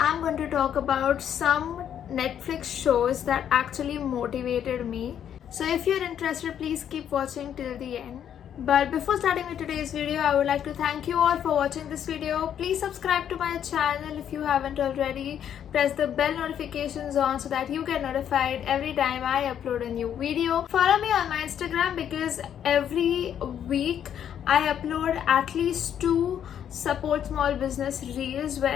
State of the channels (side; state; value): right; quieter; 9.4 dB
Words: going to talk about some Netflix shows that actually motivated me. So if you're interested, please keep watching till the end. But before starting with today's video, I would like to thank you all for watching this video. Please subscribe to my channel if you haven't already. Press the bell notifications on so that you get notified every time I upload a new video. Follow me on my Instagram because every week I upload at least 2 support small business reels